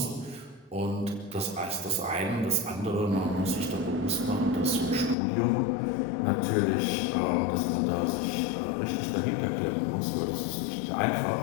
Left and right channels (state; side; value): drops out; right; at 5.2 s